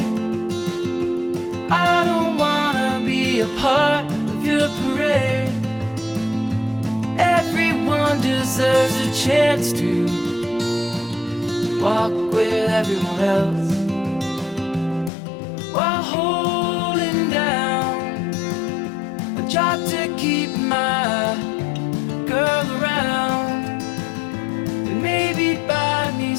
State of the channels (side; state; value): right; drops out; at 15.1 s